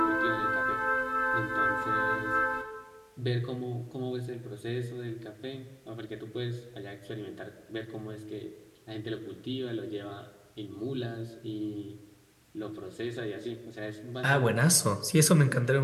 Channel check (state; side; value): identical; both; correlation 1.00